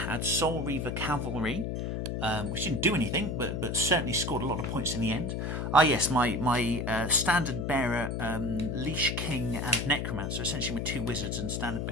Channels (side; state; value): left; noise; hum, 2 dB below the sound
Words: Soul Reaver Cavalry, which didn't do anything, but certainly scored a lot of points in the end. Yes, my Standard Bearer, Leash King and Necromancer, essentially my 2 wizards and Standard